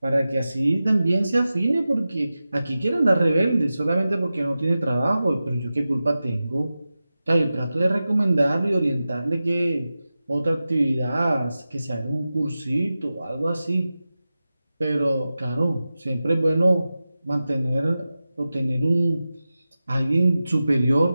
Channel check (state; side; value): inverted; both; correlation -0.94